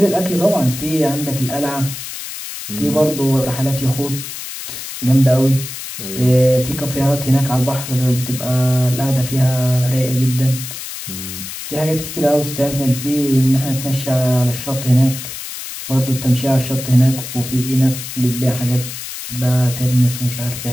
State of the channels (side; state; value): left; noise; hiss, 9 dB below the sound